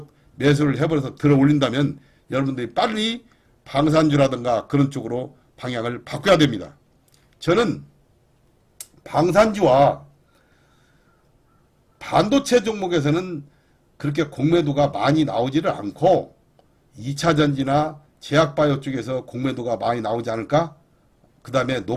매수를 해버려서 들어 올린다면 여러분들이 빨리 방산주라든가 그런 쪽으로 방향을 바꿔야 됩니다. 저는 방산주와 반도체 종목에서는 그렇게 공매도가 많이 나오지를 않고 2차전지나 제약바이오 쪽에서 공매도가 많이 나오지 않을까? 그 다음에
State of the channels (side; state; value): both; identical; correlation 1.00